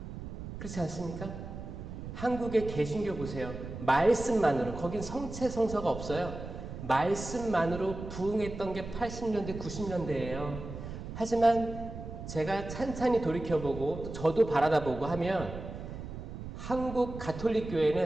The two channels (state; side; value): noise; right; rumble, 9 dB below the sound